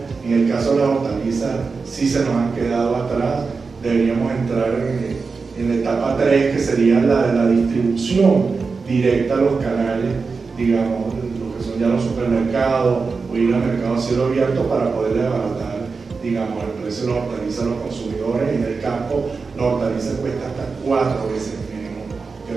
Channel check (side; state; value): left; quieter; 4.6 dB